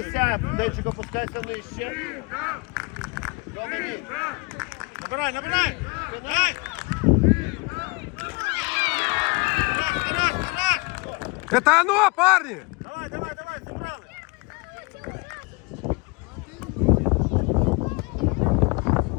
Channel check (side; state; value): right; quieter; 28.1 dB